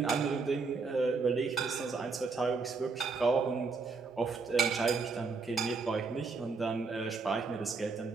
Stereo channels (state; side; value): quieter; left; 4.5 dB